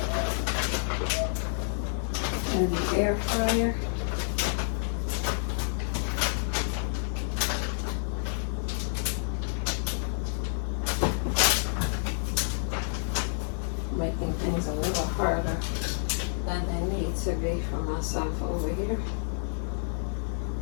in the air fryer. Making things a little harder than they need to be for myself over here.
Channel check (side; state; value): right; silent; digital silence